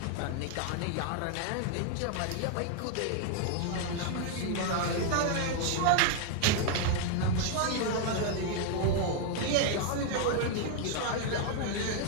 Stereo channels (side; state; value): both; different; correlation 0.00